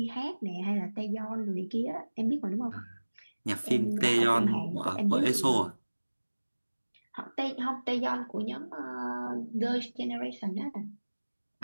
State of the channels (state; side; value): inverted; both; correlation -1.00